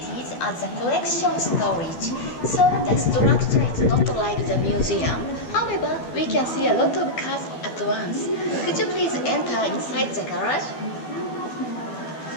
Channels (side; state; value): right; late; 12 ms